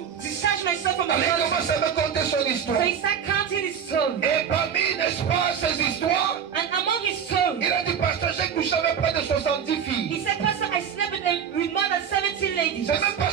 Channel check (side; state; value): left; quieter; 7.9 dB